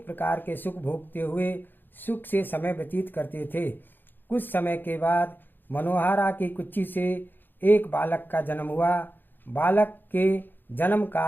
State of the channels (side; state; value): right; late; 0.093 ms